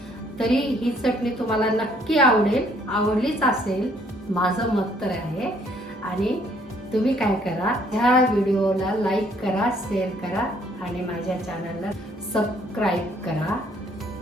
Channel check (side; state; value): both; normal; correlation 0.64